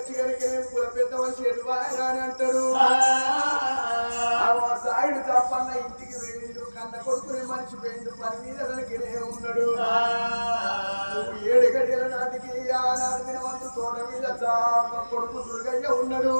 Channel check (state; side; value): inverted; both; correlation -1.00